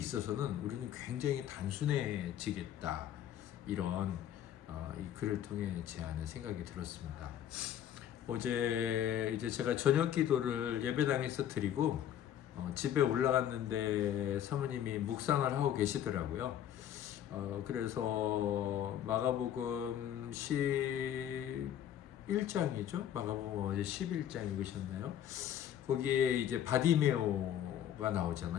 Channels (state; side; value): quieter; right; 10.5 dB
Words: 우리는 굉장히 단순해지겠다. 이런 이 글을 통해 제 안에 생각이 들었습니다. 어제 이제 제가 저녁 기도를 예배당에서 드리고 집에 올라갔는데 사모님이 묵상을 하고 계시더라고요. 그래서 마가복음 11장이죠. 마가복음 어제 11장 읽으셨나요? 거기에 이제 바디메오가